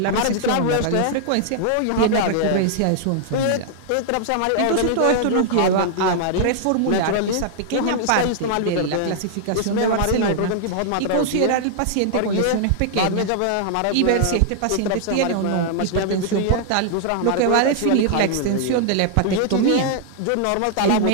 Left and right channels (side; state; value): both; different; correlation -0.01